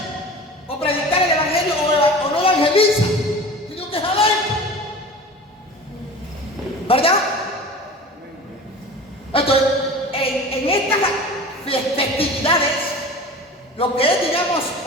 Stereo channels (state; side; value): normal; both; correlation 0.37